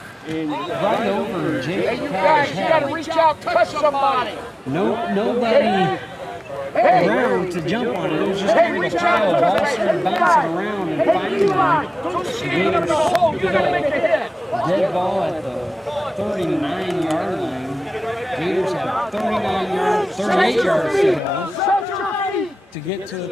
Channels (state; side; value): normal; both; correlation 0.98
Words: Right over Jake. You gotta reach out, touch somebody. Nobody around to jump on it. It was just kind of a trial. Ball started bouncing around and finally the Gators scooped up. Dead ball at the 39-yard line. Gators have 38 yards to get to the